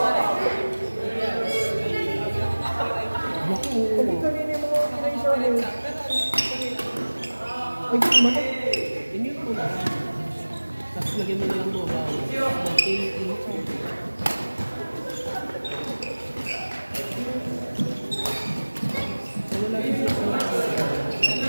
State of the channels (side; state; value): both; inverted; correlation -1.00